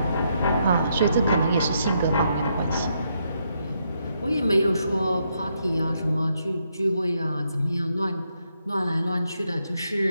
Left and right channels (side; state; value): both; inverted; correlation -0.78